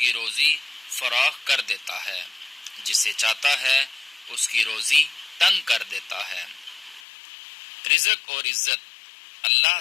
روزی فراخ کر دیتا ہے، جسے چاہتا ہے اس کی روزی تنگ کر دیتا ہے۔ رزق اور عزت اللہ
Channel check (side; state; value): right; drops out; at 7.0 s